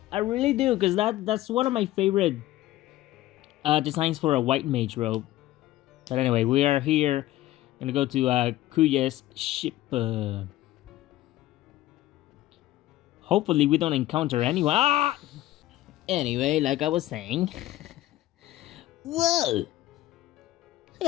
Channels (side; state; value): right; quieter; 15.5 dB